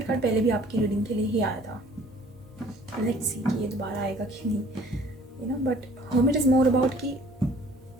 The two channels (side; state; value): both; normal; correlation 0.54